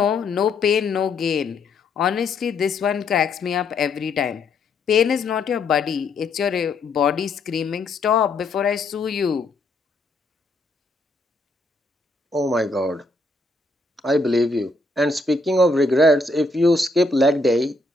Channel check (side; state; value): right; quieter; 3.1 dB